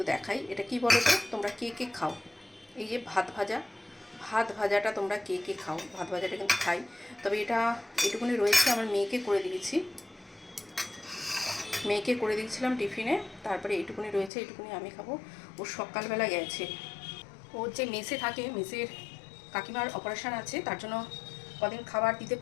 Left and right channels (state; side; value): drops out; right; at 14.3 s